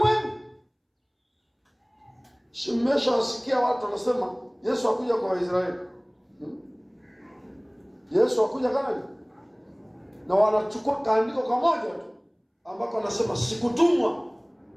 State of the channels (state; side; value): identical; both; correlation 1.00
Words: Mmeshawasikia watu wanasema Yesu hakuja kwa Waisraeli. Yesu hakuja Kanaani. Na wanachukua kaandiko kamoja tu ambako anasema sikutumwa